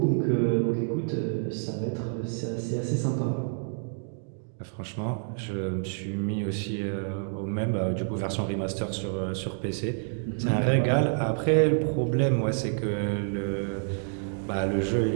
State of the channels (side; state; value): left; silent; digital silence